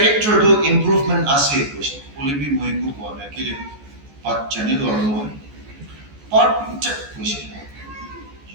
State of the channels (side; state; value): left; late; 14 ms